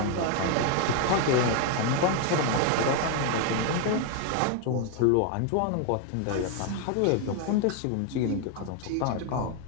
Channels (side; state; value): both; different; correlation 0.01